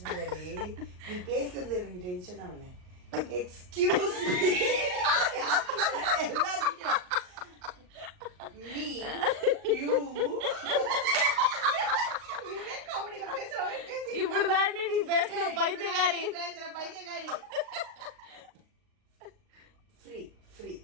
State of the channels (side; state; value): left; late; 39 ms